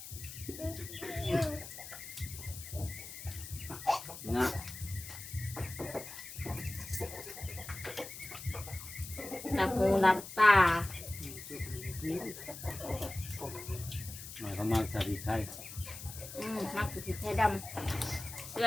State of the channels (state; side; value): noise; left; hiss, 11 dB below the sound